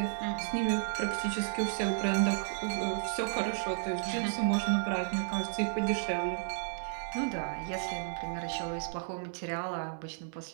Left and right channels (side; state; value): left; silent; 56 dB below the other